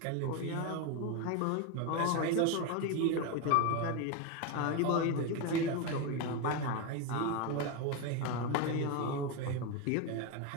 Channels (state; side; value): different; both; correlation 0.03